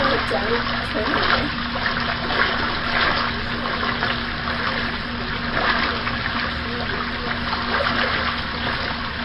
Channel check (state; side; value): identical; both; correlation 1.00